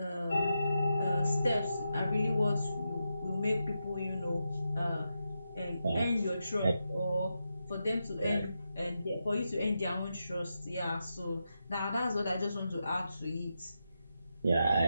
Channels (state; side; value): inverted; both; correlation -0.87